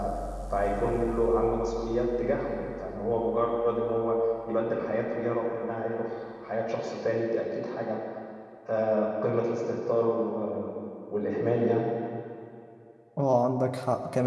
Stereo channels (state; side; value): identical; both; correlation 1.00